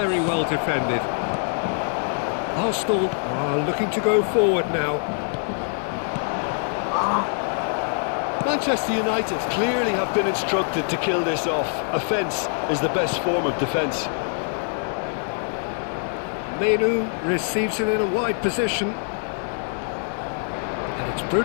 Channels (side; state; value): right; silent; 62 dB below the other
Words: well defended. Arsenal are looking to go forward now. Manchester United clearly have been instructed to kill this off. Offence is the best form of defence. Menu receives it in a wide position. And it's